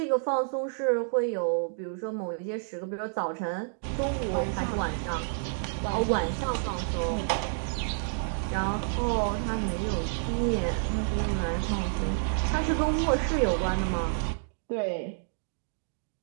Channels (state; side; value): silent; left; digital silence